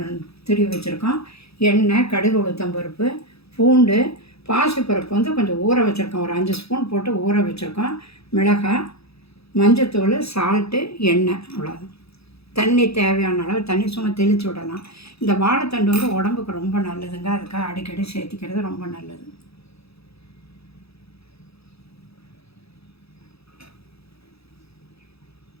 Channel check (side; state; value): right; late; 0.78 ms